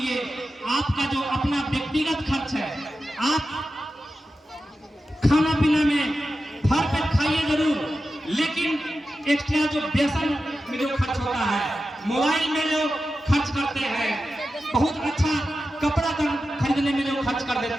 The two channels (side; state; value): both; normal; correlation 0.92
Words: आपका जो अपना व्यक्तिगत खर्च है, आप खाना पीना में भर पेट खाइए जरूर, लेकिन एक्स्ट्रा जो बेसन में जो खर्च होता है, मोबाइल में जो खर्च करते हैं, बहुत अच्छा कपड़ा खरीदने में जो खर्च कर